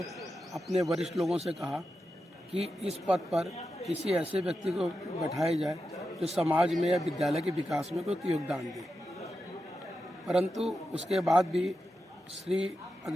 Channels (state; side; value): normal; both; correlation 0.89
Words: अपने वरिष्ठ लोगों से कहा कि इस पद पर किसी ऐसे व्यक्ति को बैठाया जाए जो समाज में या विद्यालय के विकास में कोई योगदान दे। परंतु उसके बाद भी श्री